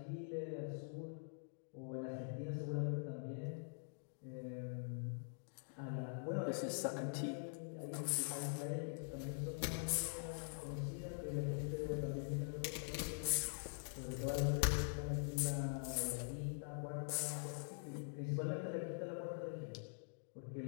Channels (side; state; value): right; silent; digital silence